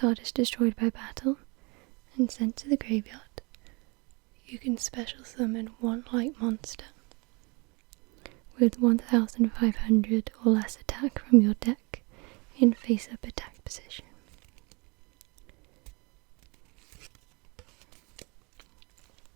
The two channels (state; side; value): quieter; left; 28.9 dB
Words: is destroyed by battle and sent to the graveyard, you can special summon one light monster with 1500 or less attack from your deck in face-up attack position.